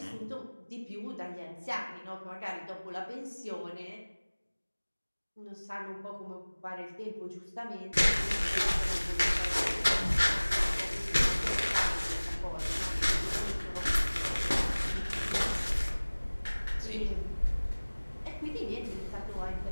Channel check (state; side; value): inverted; both; correlation -1.00